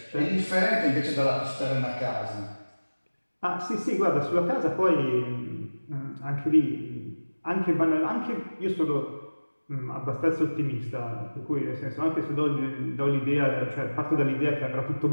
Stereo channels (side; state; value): both; inverted; correlation -1.00